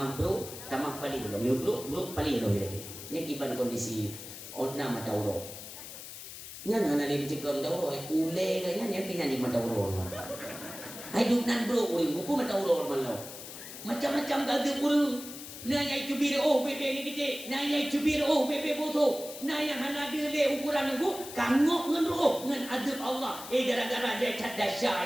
paling belum, bro paling belum dia. Ini kiban kondisi ona mata orang. Nya nana lebih cekam dah orang, ule kayaknya ni kena di mata orang. Hidup nan bro, buku mata urut malau. Macam-macam gada urut. Naya cubir bebe ni kita. Naya cubir bebe bodoh. Naya hana dia le ukuran aku kangok ngan ngan adab Allah. Gara-gara dia cat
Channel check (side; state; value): left; noise; hiss, 12 dB below the sound